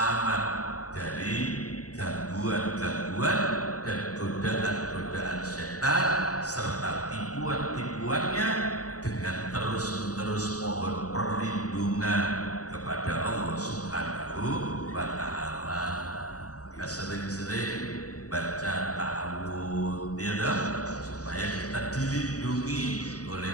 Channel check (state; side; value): late; right; 0.67 ms